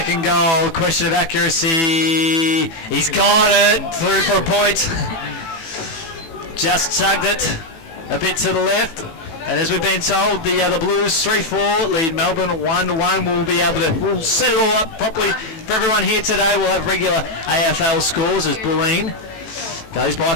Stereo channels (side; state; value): right; late; 18 ms